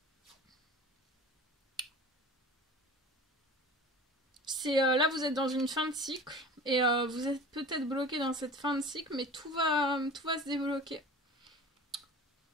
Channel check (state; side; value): normal; both; correlation 0.39